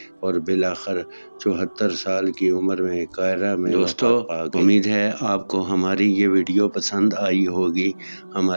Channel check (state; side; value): inverted; both; correlation -1.00